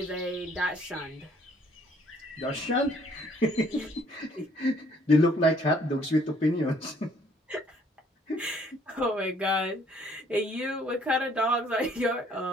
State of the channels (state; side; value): normal; both; correlation 0.62